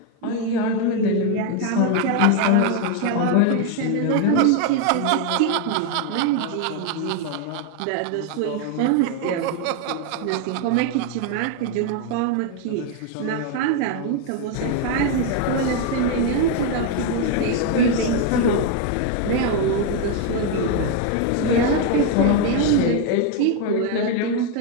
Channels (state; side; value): different; both; correlation 0.01